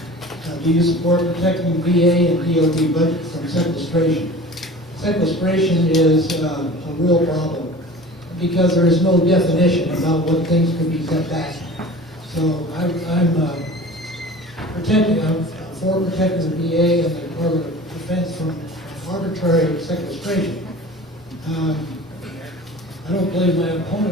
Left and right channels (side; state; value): both; normal; correlation 0.40